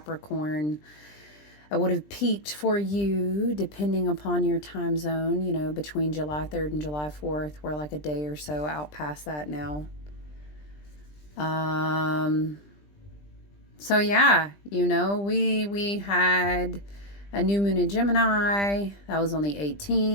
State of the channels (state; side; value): late; right; 20 ms